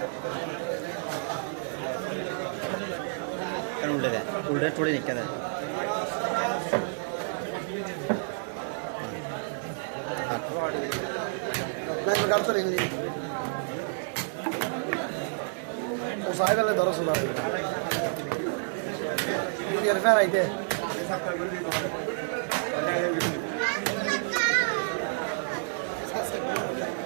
কেন উল্টে দেয় উল্টে টোড়ে নিকে দেয় লাইভ কাটতে রিংলি ও সাহেবেলে ধরো সুদা ইয়ার ফের আইতে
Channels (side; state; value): left; silent; digital silence